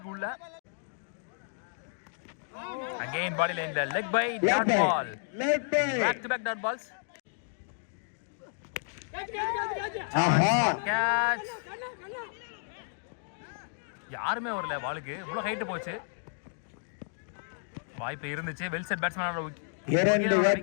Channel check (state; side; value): silent; right; digital silence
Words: உள்ள. Again body line the leg by dot ball. Back to back dot balls. Catch. யாருமே வரல பாலுக்கு. இவ்வளவு ஹைட் போச்சு. வாய்ப்பு இருந்துச்சு. வெல் செட் பேட்ஸ்மேனோட